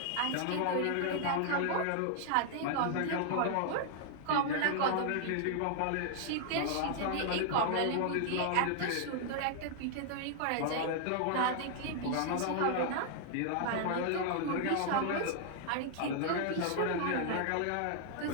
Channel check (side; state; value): both; different; correlation 0.00